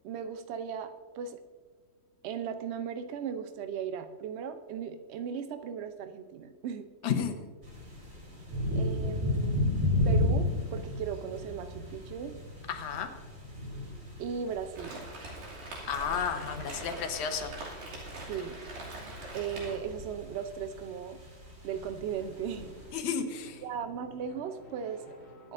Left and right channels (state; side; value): late; left; 3.1 ms